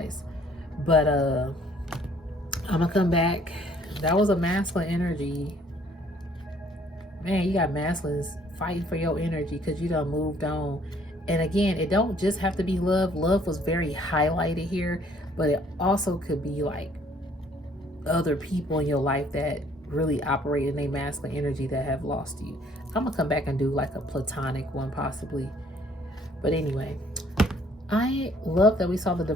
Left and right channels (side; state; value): both; normal; correlation 0.61